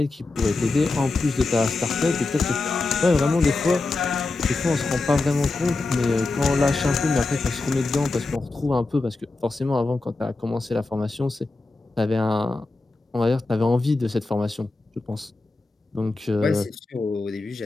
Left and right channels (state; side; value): quieter; right; 3.4 dB